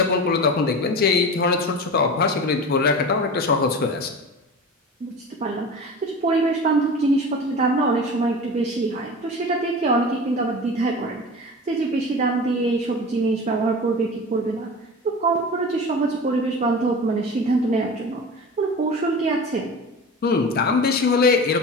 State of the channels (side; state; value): both; normal; correlation 0.32